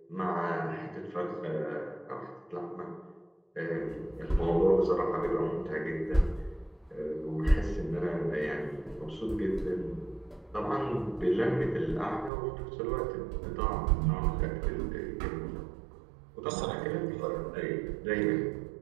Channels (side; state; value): left; drops out; at 12.3 s